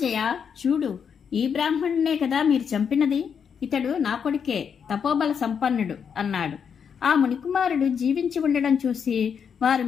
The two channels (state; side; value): quieter; right; 7.1 dB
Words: చూడు, ఈ బ్రాహ్మణునే కదా మీరు చంపినది. ఇతడు నా కొడుకే, తపోబల సంపన్నుడు అన్నాడు. ఆ మునికుమారుడు జీవించి ఉండడం చూసి వారు